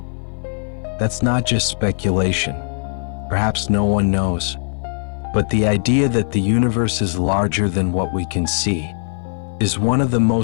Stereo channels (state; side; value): silent; right; 58 dB below the other